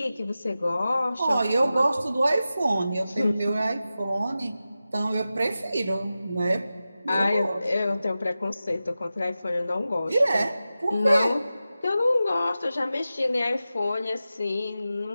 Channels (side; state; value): both; inverted; correlation -0.94